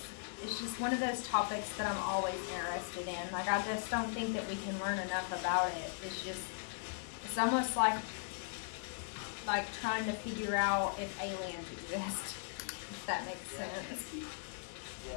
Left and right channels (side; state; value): right; silent; digital silence